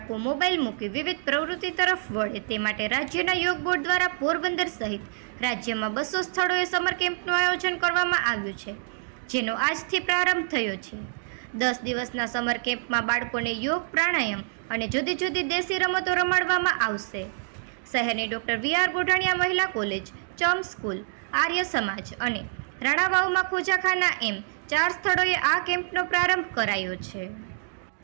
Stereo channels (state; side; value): silent; left; digital silence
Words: મોબાઈલ મૂકી વિવિધ પ્રવૃત્તિ તરફ વળે તે માટે રાજ્યના યોગ બોર્ડ દ્વારા પોરબંદર સહિત રાજ્યમાં 200 સ્થળોએ સમર કેમ્પનું આયોજન કરવામાં આવ્યું છે, જેનો આજથી પ્રારંભ થયો છે. 10 દિવસના સમર કેમ્પમાં બાળકોને યોગ, પ્રાણાયામ અને જુદી જુદી દેશી રમતો રમાડવામાં આવશે. શહેરની ડૉક્ટર વી.આર. ગોઢાણીયા મહિલા કોલેજ, ચમ સ્કૂલ, આર્ય સમાજ અને રાણાવાવમાં ખોજાખાના એમ 4 સ્થળોએ આ કેમ્પનો પ્રારંભ કરાયો છે.